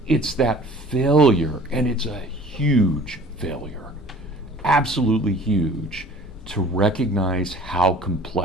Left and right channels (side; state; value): both; normal; correlation 0.48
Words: It's that failure, and it's a huge failure, absolutely huge, to recognize how